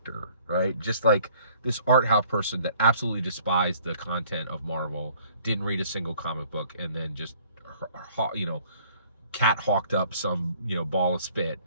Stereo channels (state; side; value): inverted; both; correlation -0.57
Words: right? Just like this art house person that absolutely despised the content of Marvel, didn't read a single comic book, and then just, cat hawked up some, ball of spit,